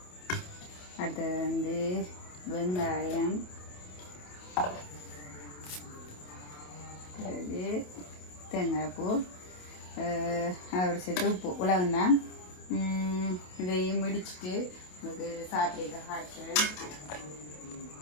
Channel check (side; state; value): right; late; 28 ms